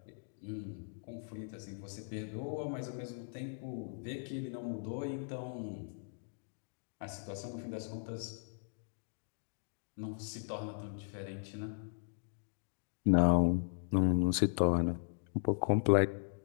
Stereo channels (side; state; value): right; silent; digital silence